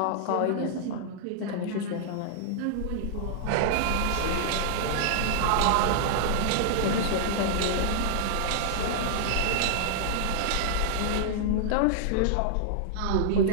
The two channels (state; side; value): different; both; correlation -0.01